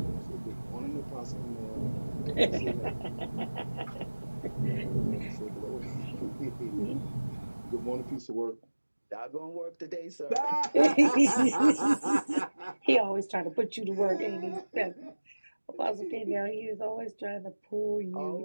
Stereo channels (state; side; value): inverted; both; correlation -1.00